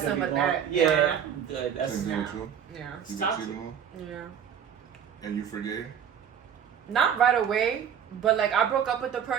gonna be with going. that. Yeah, Yeah. I'm good. That's Same here too. Yeah. You It's been toxic. cheating on? Yeah. And you forgave? Not right away, but like I broke up with the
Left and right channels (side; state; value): left; quieter; 8.4 dB